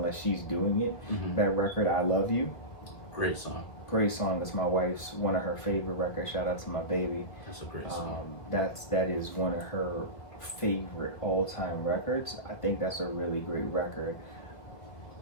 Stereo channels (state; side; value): late; right; 1.9 ms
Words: she's doing it. That record, I Love You. Great song. Great song. It's my wife's one of her favorite records. Shout out to my baby. That's a great song. That is one of her favorite all-time records. I think that's a really great record.